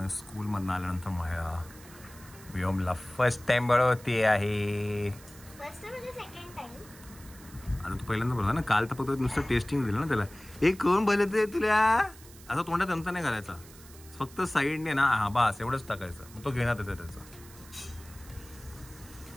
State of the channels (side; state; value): right; noise; hiss, 21 dB below the sound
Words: स्कूल मधून आल्यानंतर माया व्योमला फर्स्ट टाइम भरवते आहे. आता तू पहिल्यांदा बोलला ना, काल तर फक्त नुसतं टेस्टिंग दिलं ना त्याला. एक कोण बोलते तुला असं तोंडात चमचा नाही करायचा, फक्त साईडने ना, हा बास एवढंच टाकायचं, मग तो घेण्यात येतं त्याचं.